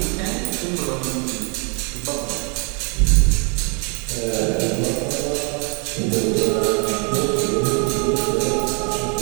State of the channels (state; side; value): quieter; left; 35.9 dB